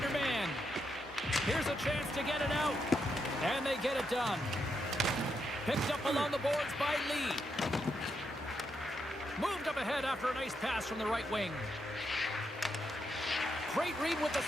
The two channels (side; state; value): both; normal; correlation 0.82